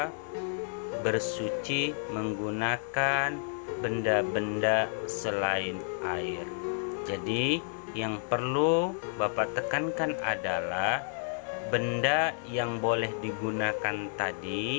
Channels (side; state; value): right; silent; 57 dB below the other